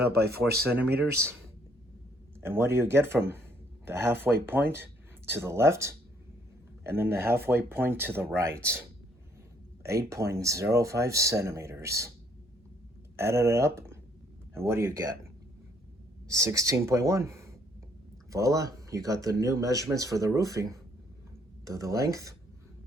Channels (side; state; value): both; normal; correlation 0.66